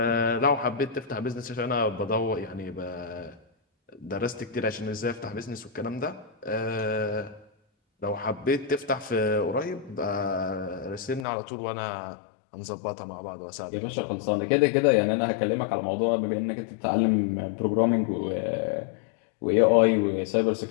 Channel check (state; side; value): drops out; right; at 11.2 s